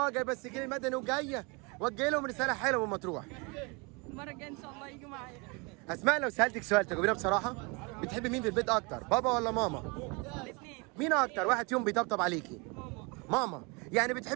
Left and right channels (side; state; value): left; quieter; 29.8 dB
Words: جايبه السجل المدني وجايه. وجه لهم رساله حلوه من مطروح. المره الجايه ان شاء الله يجوا معايا. اسماء لو سالتك سؤال تجاوبينا بصراحه، بتحبي مين في البيت اكتر، بابا ولا ماما؟ الاثنين. مين اكتر واحد فيهم بيطبطب عليكي؟ ماما. يعني